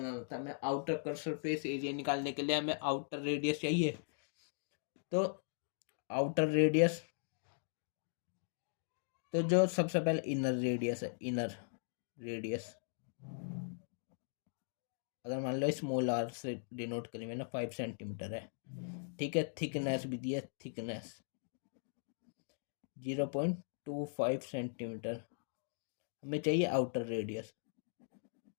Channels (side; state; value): right; silent; digital silence